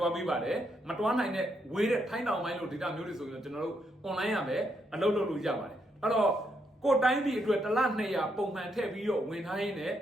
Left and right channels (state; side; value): normal; both; correlation 0.78